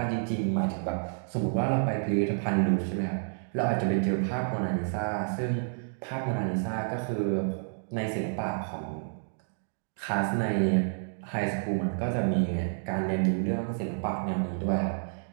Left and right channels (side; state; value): left; silent; digital silence